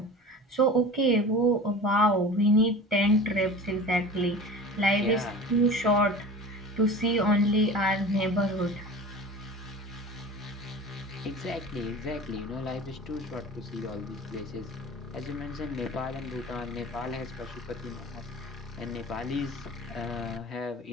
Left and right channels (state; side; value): normal; both; correlation 0.36